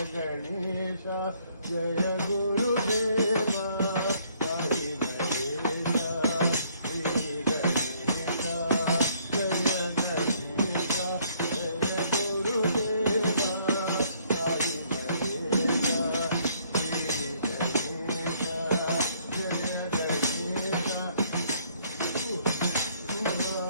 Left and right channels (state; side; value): inverted; both; correlation -0.65